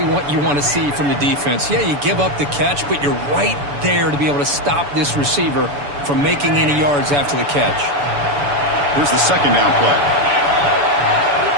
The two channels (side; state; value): left; late; 7.0 ms